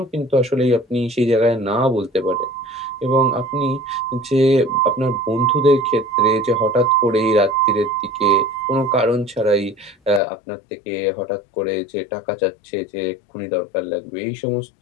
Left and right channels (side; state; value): right; drops out; at 10.2 s